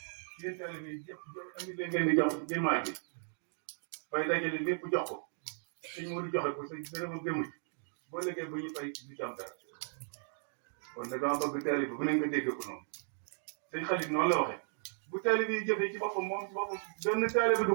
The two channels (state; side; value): silent; left; 54 dB below the other